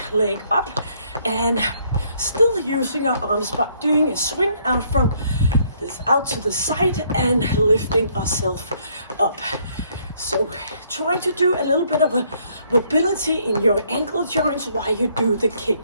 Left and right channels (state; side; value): inverted; both; correlation -0.67